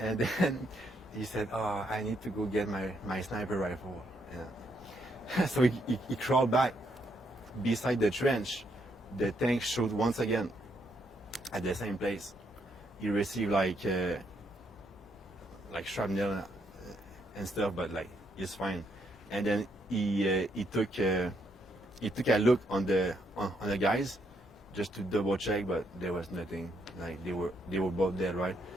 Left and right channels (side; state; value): both; normal; correlation 0.75